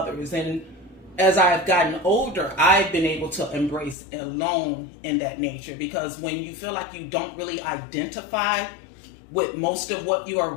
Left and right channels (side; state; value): right; drops out; at 4.0 s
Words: And as I've gotten older, I've been able to embrace alone in that nature, because when you feel like you don't really identify with most of what you're